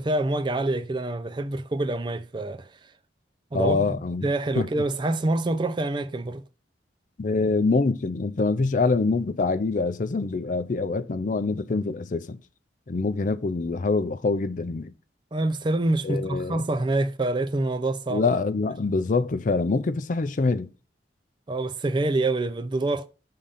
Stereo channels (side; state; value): both; normal; correlation 0.56